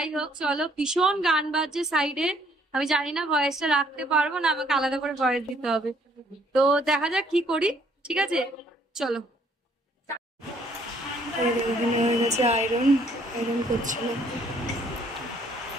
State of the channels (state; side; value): normal; both; correlation 0.64